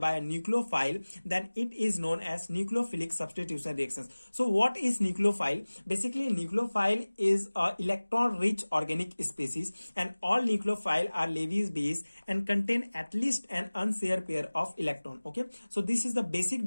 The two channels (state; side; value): inverted; both; correlation -1.00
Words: by a nucleophile, then it is known as nucleophilic substitution reactions. So what is nucleophile? Basically nucleophile is a electron rich organic species, and all nucleophile are Lewis base and contain at least an unshared pair of electron. Okay, so this is the basic